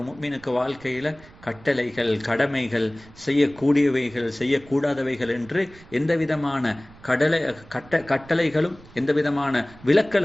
முஃமினுக்கு வாழ்க்கையில் கட்டளைகள், கடமைகள், செய்யக்கூடியவைகள், செய்யக்கூடாதவைகள் என்று எந்த விதமான கட்டளைகளும் எந்த விதமான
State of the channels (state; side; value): noise; right; rumble, 22 dB below the sound